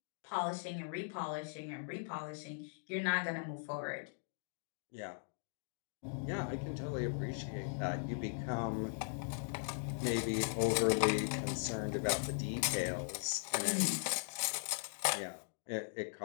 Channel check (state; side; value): silent; right; digital silence